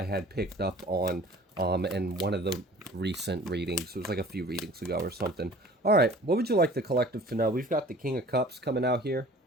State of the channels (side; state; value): both; normal; correlation 0.47